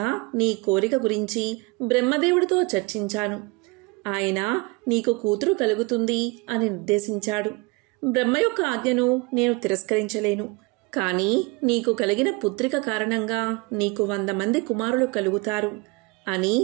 నీ కోరిక గురించి బ్రహ్మదేవుడితో చర్చించాను. ఆయన నీకు కూతురు కలుగుతుంది అని నిర్దేశించాడు. బ్రహ్మ యొక్క ఆజ్ఞను నేను తిరస్కరించలేను. కాని నీకు కలిగిన పుత్రిక కారణంగా నీకు 100 మంది కుమారులు కలుగుతారు అని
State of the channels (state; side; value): quieter; left; 26.2 dB